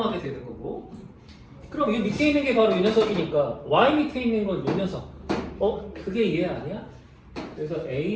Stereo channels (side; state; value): both; identical; correlation 1.00